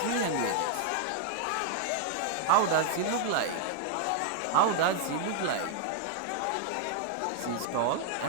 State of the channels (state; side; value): different; both; correlation 0.00